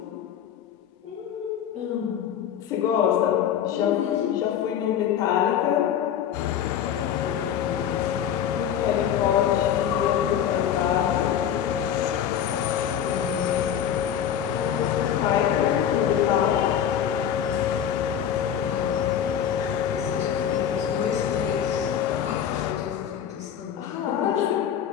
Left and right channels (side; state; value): right; quieter; 9.3 dB